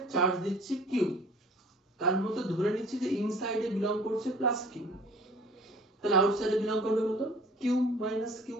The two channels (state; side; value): normal; both; correlation 0.50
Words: চার্জ দিচ্ছি q, তার মধ্যে ধরে নিচ্ছি যে ইনসাইডে বিলং করছে প্লাস q, তাহলে আউটসাইডে বিলং করবে কত q মাইনাস